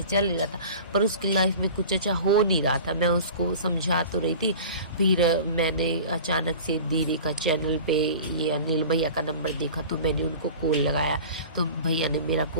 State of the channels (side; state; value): both; inverted; correlation -0.39